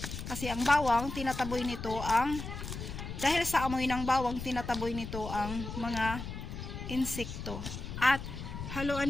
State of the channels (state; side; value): noise; left; rumble, 7 dB below the sound